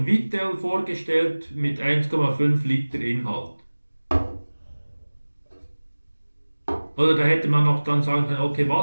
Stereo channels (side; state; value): both; inverted; correlation -1.00